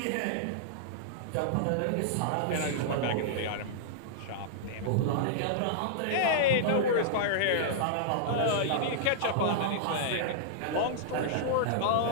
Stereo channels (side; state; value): both; different; correlation -0.02